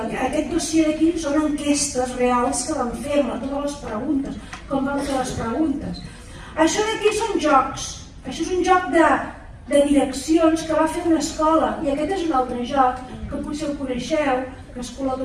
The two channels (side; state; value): both; identical; correlation 1.00